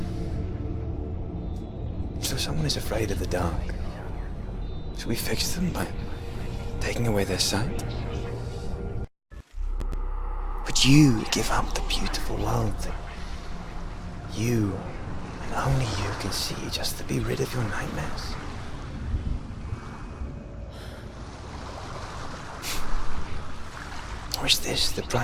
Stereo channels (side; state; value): both; identical; correlation 1.00